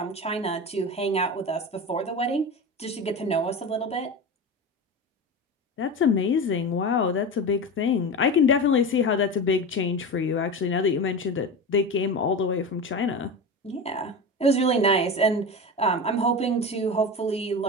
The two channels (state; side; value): normal; both; correlation 0.26